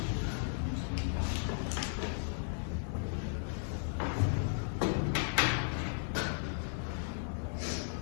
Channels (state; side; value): silent; right; digital silence